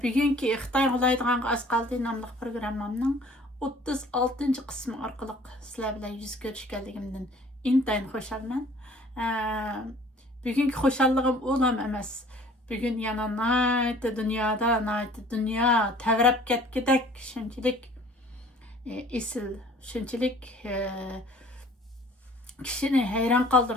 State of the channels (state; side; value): normal; both; correlation 0.52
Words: Bugungi Xitoy qulaydigan az qaldı nomli programmamning 36-qismi orqali sizlar bilan yuz ko'rishganligimdan intayin xushalman. Bugungi xushalligim o'lam emas. Bugun yana dunyo tavrab ketgidek shunchalik esil, shunchalik kishini hayron